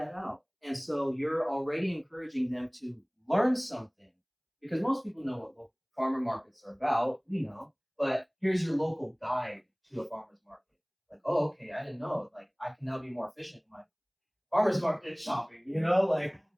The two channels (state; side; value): identical; both; correlation 1.00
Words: out. And so you're already encouraging them to learn something because most people know what local farmer markets are about. We know, but here's your local guide to a farmer's market. Like, oh, okay, I didn't know. Like, I can now be more efficient in my farmer's market shopping. You know, like